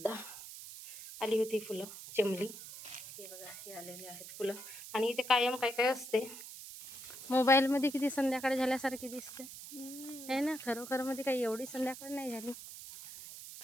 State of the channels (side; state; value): right; noise; hiss, 12 dB below the sound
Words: आली होती फुलं, चेमली, हे बघा हे आलेले आहेत फुलं. आणि इथे कायम काय काय असते. मोबाईलमध्ये किती संध्याकाळ झाल्यासारखी दिसते आहे ना, खरोखर मध्ये काही एवढी संध्याकाळ नाही झाली.